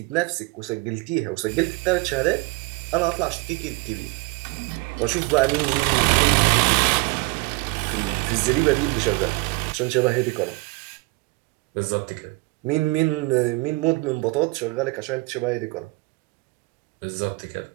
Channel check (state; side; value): quieter; left; 25.2 dB